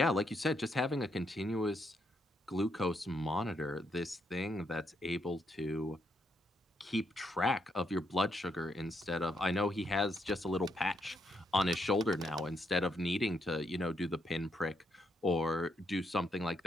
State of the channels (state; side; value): normal; both; correlation 0.77